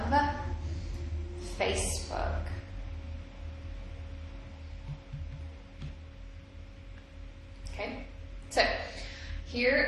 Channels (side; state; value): both; identical; correlation 1.00